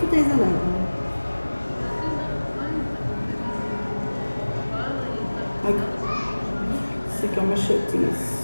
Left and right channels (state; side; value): inverted; both; correlation -1.00